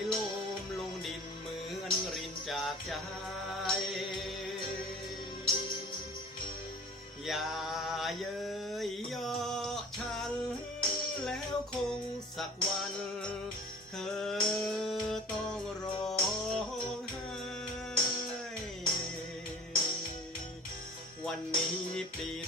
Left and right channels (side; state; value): both; normal; correlation 0.42